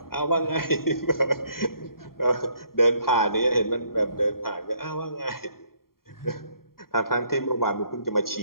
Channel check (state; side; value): late; right; 0.93 ms